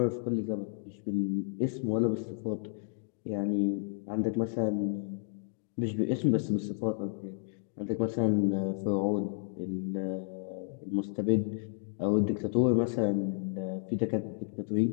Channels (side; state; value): right; silent; digital silence